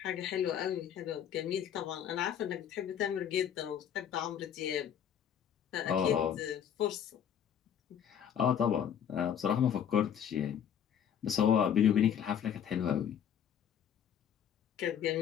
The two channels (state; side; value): quieter; right; 9.0 dB